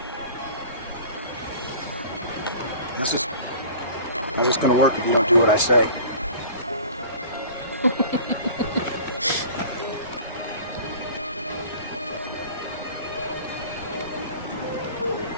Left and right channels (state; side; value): inverted; both; correlation -0.42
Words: How's this gonna work if you don't do what I say?